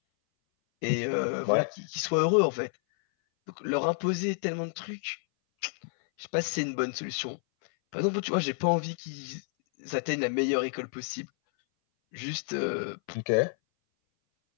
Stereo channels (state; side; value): silent; right; 58 dB below the other